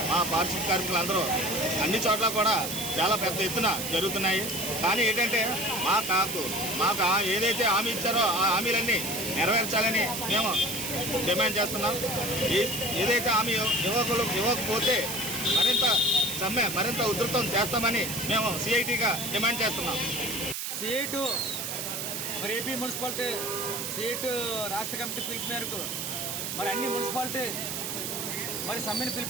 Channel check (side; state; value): right; noise; hiss, 4 dB below the sound